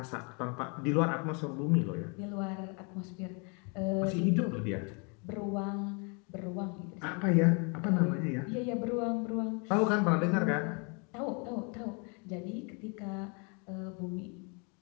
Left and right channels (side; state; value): right; quieter; 34.3 dB